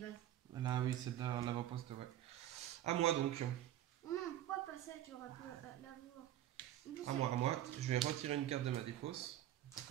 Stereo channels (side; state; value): left; quieter; 12.4 dB